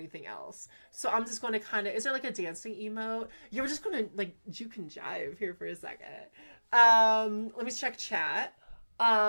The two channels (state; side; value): inverted; both; correlation -1.00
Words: else. So I'm just going to kind of, is there like a dancing emote? Yeah, we're just going to like juke and jive here for a second. Let me check chat.